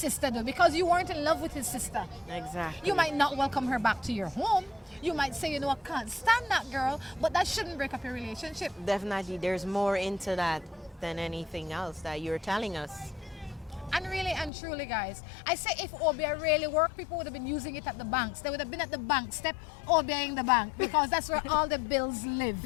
did because you weren't in love with his sister. Exactly. You might not welcome her back to your home. You might say, you know, I can't stand that girl, but that shouldn't break up your relationship. Definitely, there's more into that than anything else that you're telling us. And really and truly, guys, I say if OBI really worked, people would have been using it at the banks. They would have been at the bank step OBIing the bank because that's where all the bills live.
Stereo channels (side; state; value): right; drops out; at 14.5 s